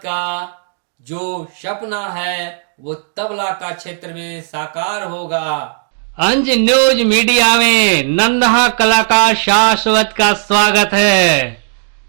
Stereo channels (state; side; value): silent; left; digital silence